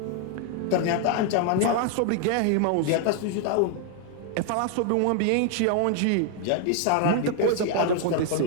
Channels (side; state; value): both; different; correlation 0.00